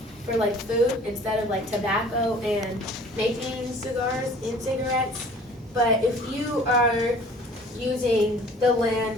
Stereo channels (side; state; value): both; normal; correlation 0.49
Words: for like food instead of like tobacco and making cigars and cigarettes. But if you are using the land